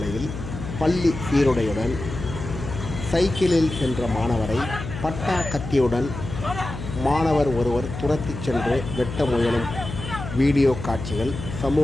பள்ளி சீருடையுடன் சைக்கிளில் சென்ற மாணவரை பட்டா கத்தியுடன் மாணவர் ஒருவர் துரத்திச் சென்று வெட்ட முயலும் வீடியோ காட்சிகள்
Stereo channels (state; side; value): noise; left; hum, 8 dB below the sound